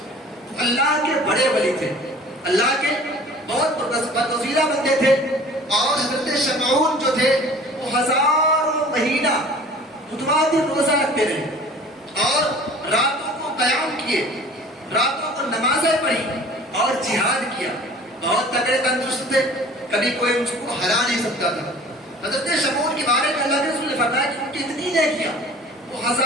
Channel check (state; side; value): normal; both; correlation 0.46